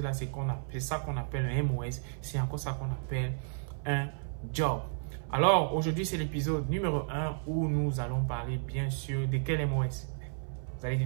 c'est ça qu'on appelle un MOS. C'est encore ça qu'on appelle un job. Alors, aujourd'hui, c'est l'épisode numéro 1 où nous allons parler, bien sûr, de quel MOS? Vous allez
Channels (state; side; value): silent; left; 56 dB below the other